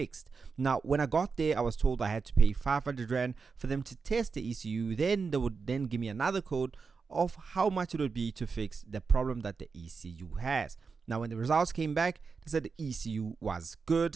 Now, when I got there, I was told I had to pay 500 Rand for them to test the ECU. Then they would then give me another code of how much it would be to fix the problem that the ECU has. Now, when the results came back, they said the ECU was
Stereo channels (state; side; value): quieter; left; 5.1 dB